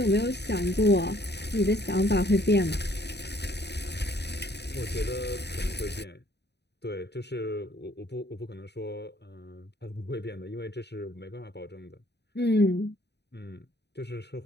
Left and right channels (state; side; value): late; right; 0.49 ms